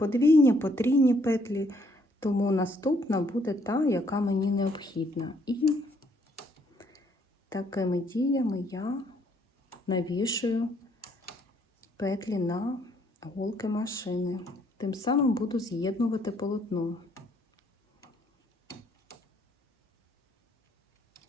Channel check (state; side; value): normal; both; correlation 0.68